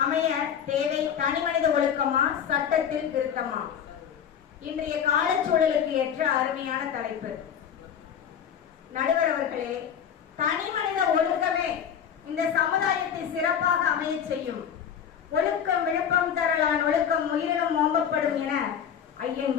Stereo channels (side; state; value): right; quieter; 8.4 dB